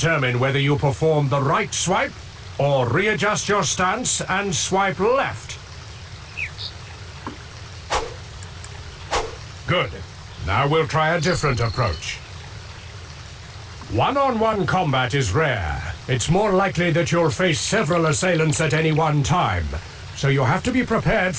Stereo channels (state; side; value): identical; both; correlation 1.00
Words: whether you perform the right swipe or readjust your stance and swipe left. Good. Now we'll try a different approach. One-on-one combat is rare. It's more likely that you'll face several assailants at any one time, so you have to be prepared